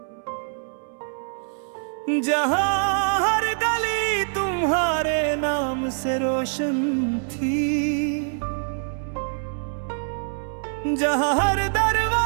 जहाँ हर गली तुम्हारे नाम से रोशन थी, जहाँ हर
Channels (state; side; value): silent; left; 62 dB below the other